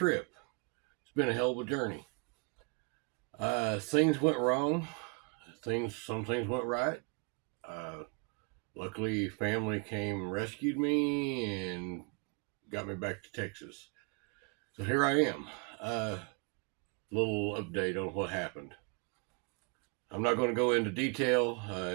It's been a hell of a journey. Things went wrong. Some things went right. Uh, Luckily, family came and rescued me and got me back to Texas. So here I am. Little update on what happened. I'm not going to go into detail.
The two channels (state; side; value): quieter; left; 34.2 dB